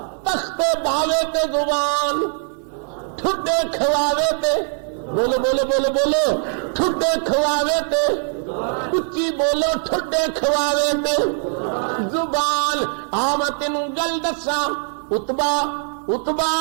تخت باوے تے زبان ٹھڈے کھواوے تے، بولو بولو بولو بولو، ٹھڈے کھواوے تے، اچھی بولو ٹھڈے کھواوے تے زبان۔ میں تینوں گل دساں، اتبا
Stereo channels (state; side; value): silent; left; 57 dB below the other